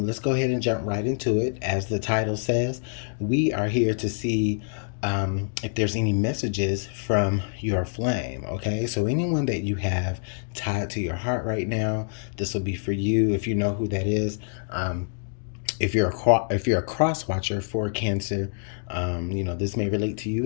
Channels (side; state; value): right; silent; digital silence